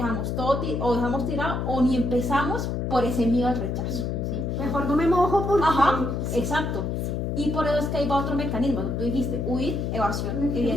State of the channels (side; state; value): left; noise; hum, 1 dB below the sound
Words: todo, o dejamos tirado, o ni empezamos por ese miedo al rechazo. ¿Sí? Mejor no me mojo porque... Exacto. Y por eso es que ahí va otro mecanismo. Tú dijiste, huir, evasión,